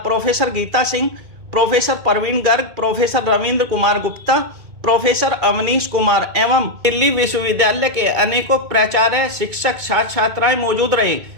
Geeta Singh, professor Praveen Garg, professor Ravindra Kumar Gupta, professor Avneesh Kumar एवं दिल्ली विश्वविद्यालय के अनेकों प्राचार्य, शिक्षक, छात्र छात्राएं मौजूद रहे।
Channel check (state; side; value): late; left; 2.2 ms